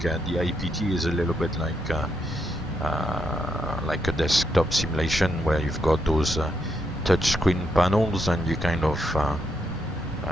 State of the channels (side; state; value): both; normal; correlation 0.79